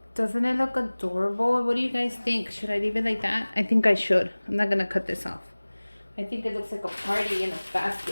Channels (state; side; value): inverted; both; correlation -1.00